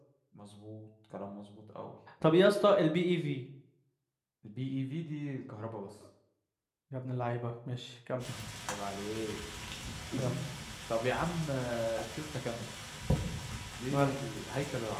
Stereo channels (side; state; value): both; identical; correlation 1.00